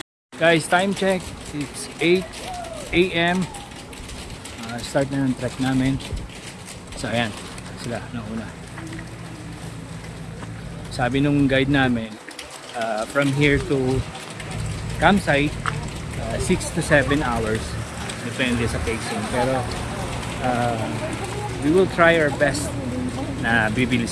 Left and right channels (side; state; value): both; identical; correlation 1.00